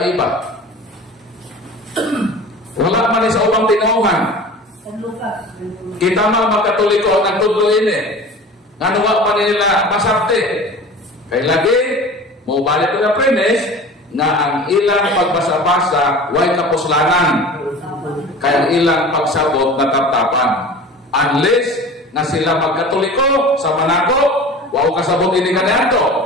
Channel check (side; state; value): both; normal; correlation 0.38